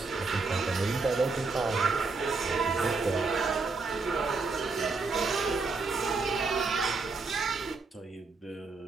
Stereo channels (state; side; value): quieter; left; 4.1 dB